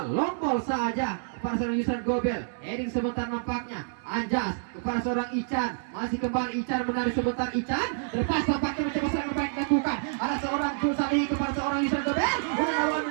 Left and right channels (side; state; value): left; silent; digital silence